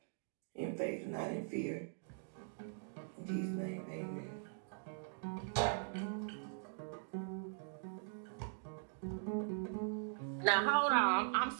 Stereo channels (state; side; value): silent; left; digital silence